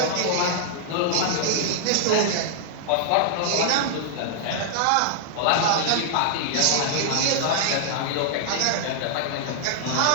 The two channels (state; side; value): different; both; correlation -0.01